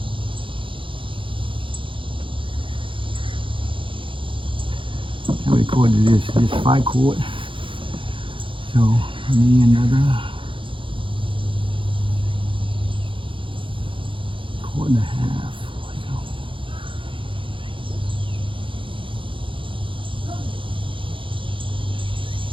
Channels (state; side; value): late; left; 0.25 ms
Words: How many cord is this? This 5 cord. So I need another cord and a half.